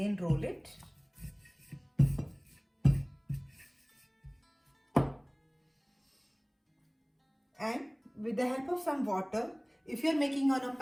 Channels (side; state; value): both; identical; correlation 1.00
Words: roll it. And with the help of some water, if you are making on a